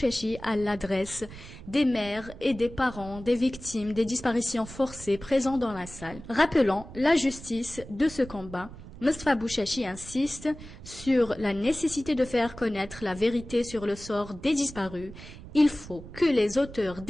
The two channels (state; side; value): noise; right; rumble, 15 dB below the sound